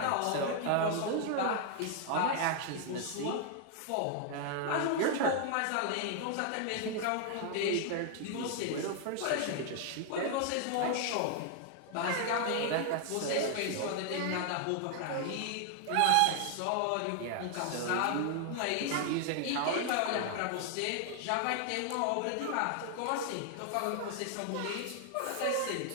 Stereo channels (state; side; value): different; both; correlation 0.00